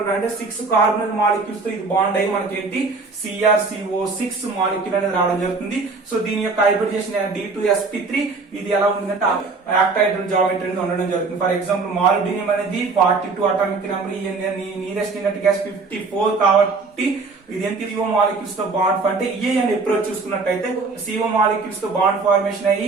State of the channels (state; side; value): quieter; left; 4.1 dB